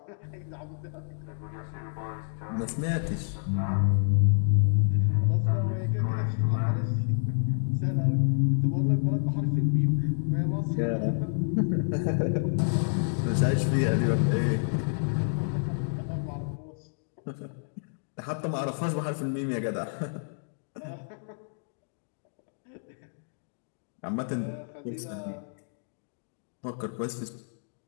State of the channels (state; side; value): silent; right; digital silence